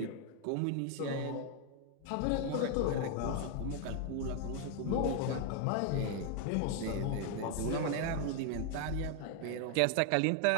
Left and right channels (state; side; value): different; both; correlation 0.00